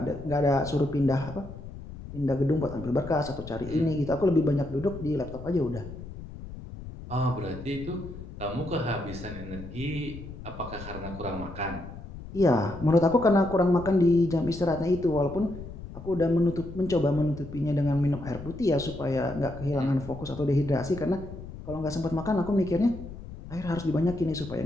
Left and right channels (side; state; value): left; noise; rumble, 13 dB below the sound